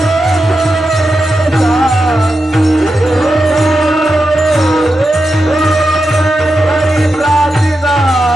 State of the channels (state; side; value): normal; both; correlation 0.88